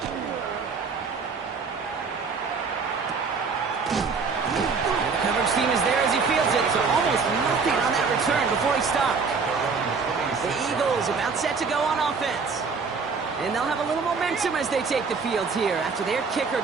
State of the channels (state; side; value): quieter; left; 5.0 dB